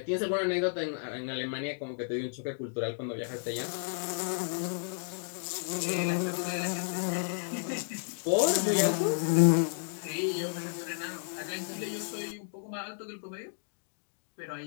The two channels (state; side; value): silent; right; digital silence